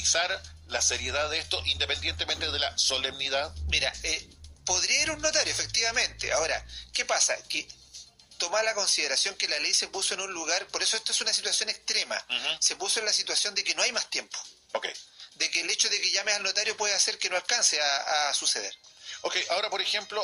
la seriedad de esto, independientemente de la solemnidad. Mira, podría ir un notario, efectivamente. Ahora, ¿qué pasa? Que toma la consideración que la ley se puso en un lugar, por eso esto es una situación extrema, se puso en la situación de que no hay más tiempo. De que el hecho de que llames al notario puede hacer que no alcance a suceder. Ahora, por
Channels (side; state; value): both; identical; correlation 1.00